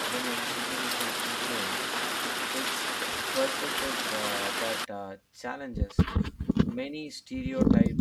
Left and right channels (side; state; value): both; identical; correlation 1.00